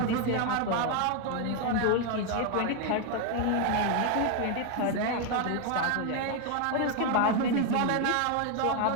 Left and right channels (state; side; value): different; both; correlation 0.00